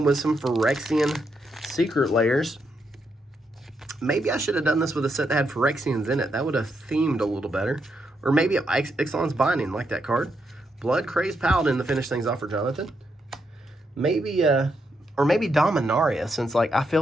with some Phyrexian secret layers. Maybe I should have done this with a set that had Phyrexians in it. That would have themed a little better. Or maybe Ixalan's Binding, like that card. Blood Crazed Paladin to finish things off for Jonathan. Maybe, or maybe Dominaria, since like I feel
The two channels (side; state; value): both; normal; correlation 0.81